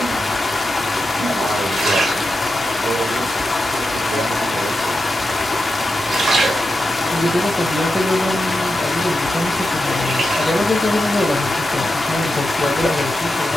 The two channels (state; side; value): normal; both; correlation 0.89